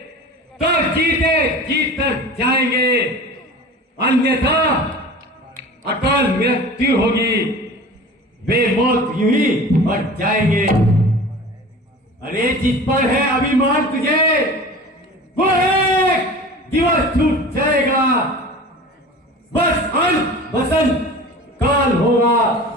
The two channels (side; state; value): both; normal; correlation 0.38